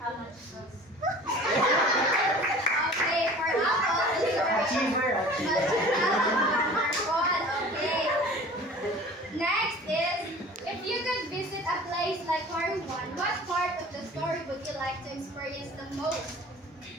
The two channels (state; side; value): normal; both; correlation 0.44